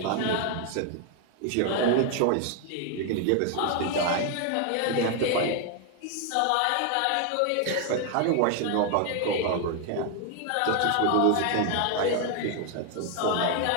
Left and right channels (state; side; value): different; both; correlation 0.00